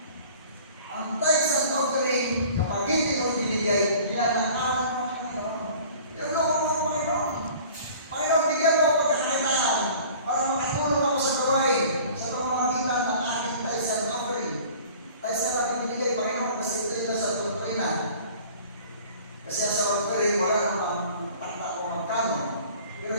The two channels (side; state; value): both; inverted; correlation -0.47